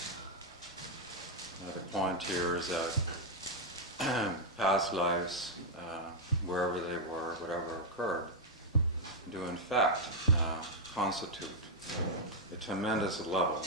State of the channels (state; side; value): normal; both; correlation -0.01